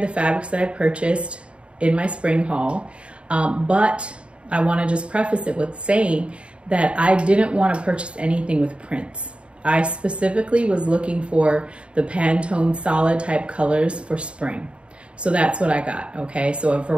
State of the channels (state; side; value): late; left; 0.058 ms